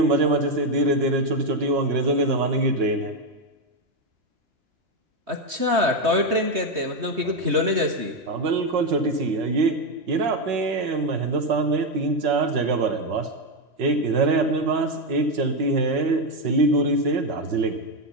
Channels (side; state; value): left; late; 3.2 ms